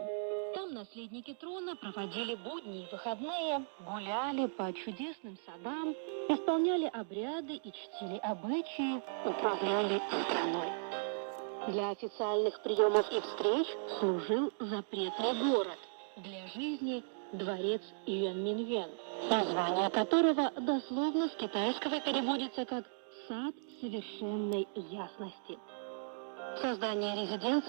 Там наследники трона проводили будни и выходные, гуляли по чудесным садам, исполняли обряды и чтили обычаи, управляли страной. Для официальных приемов и встреч служил запретный город. Для жизни – дворец Юаньминъюань, название которого дословно с китайского переводится как «сад совершенной ясности». Создание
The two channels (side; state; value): left; silent; digital silence